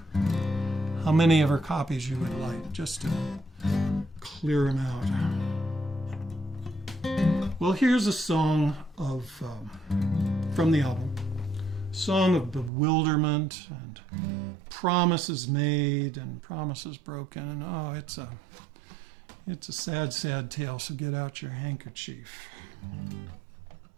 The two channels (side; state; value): left; drops out; at 12.7 s